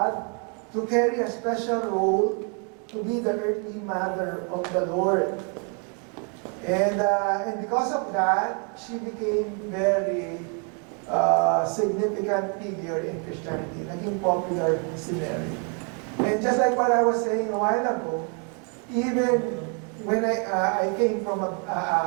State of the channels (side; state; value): left; quieter; 38.9 dB